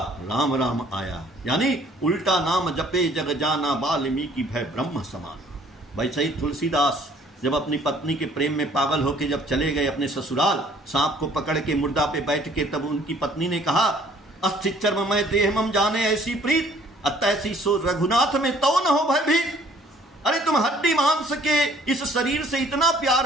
राम राम आया। यानी उल्टा नाम जपे जग जाना वाल्मीकि भय ब्रह्म समान। भाई सही तुलसीदास जब अपनी पत्नी के प्रेम में पागल होके जब चले गए अपने ससुराल, सांप को पकड़ के मुर्दा पे बैठ के, तब उनकी पत्नी ने कहा अस्थि चर्ममय देह मम जाने ऐसी प्रीत, अतैसी सो रघुनाथ में तो न हो भय भी। अरे तुम हड्डी मांस के इस शरीर से इतना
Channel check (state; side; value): normal; both; correlation 0.58